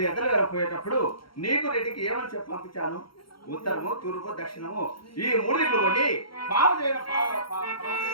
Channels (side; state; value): right; late; 0.73 ms